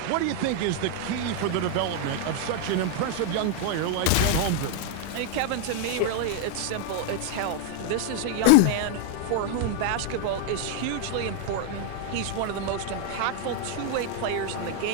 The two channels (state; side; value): different; both; correlation 0.00